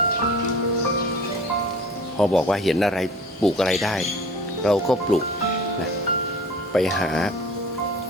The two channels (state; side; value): normal; both; correlation 0.43